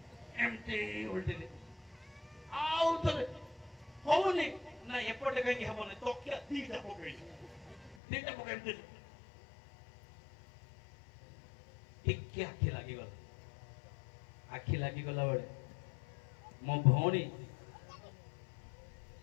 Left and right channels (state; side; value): drops out; right; at 8.0 s